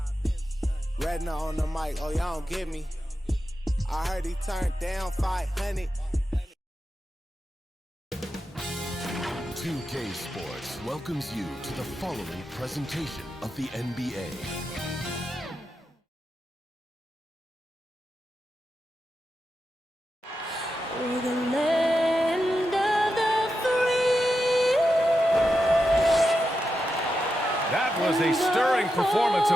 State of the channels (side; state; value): both; normal; correlation 0.88